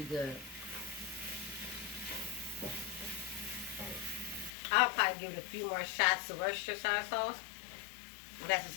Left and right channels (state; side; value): drops out; right; at 4.5 s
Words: good. I'll probably give it a few more shots of Worcestershire sauce. Well, that's